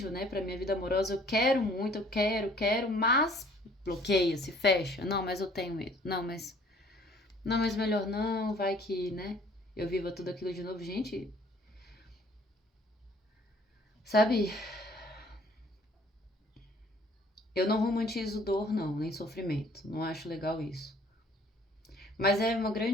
né, pra minha vida amorosa. Eu quero muito, eu quero, mas bloqueia, se fecha. Não, mas eu tenho medo. Não, mas melhor não, vai que, né? Eu viva tudo aquilo de novo, gente. Sabe? Eu não romantizo dor, não, nem sofrimento. Não acho legal isso. Mas é uma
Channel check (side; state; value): both; normal; correlation 0.57